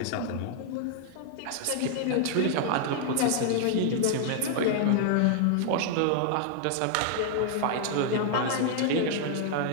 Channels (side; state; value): both; different; correlation 0.00